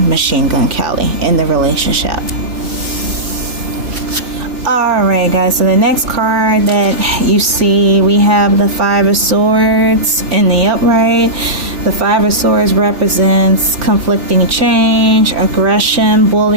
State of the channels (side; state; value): left; late; 3.4 ms